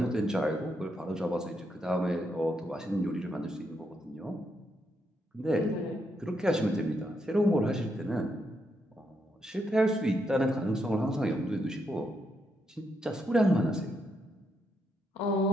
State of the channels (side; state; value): both; normal; correlation 0.80